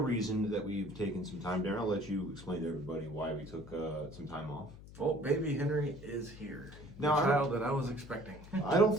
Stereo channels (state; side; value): noise; left; hum, 17 dB below the sound